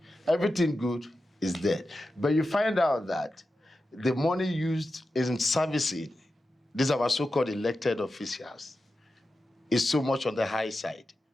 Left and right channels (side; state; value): both; normal; correlation 0.91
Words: Everything good is dead. But you find out that the money used in servicing these are our so-called elected officials is so much on the high side.